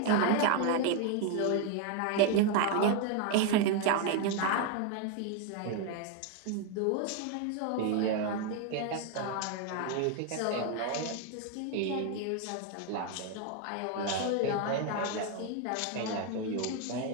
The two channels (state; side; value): different; both; correlation 0.01